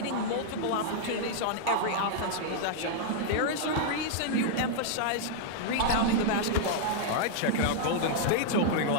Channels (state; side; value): different; both; correlation -0.01